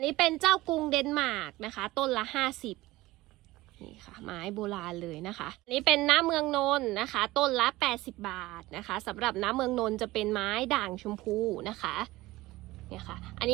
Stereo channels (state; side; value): quieter; left; 18.6 dB